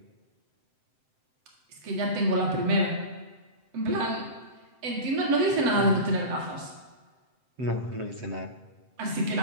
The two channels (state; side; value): late; left; 7.8 ms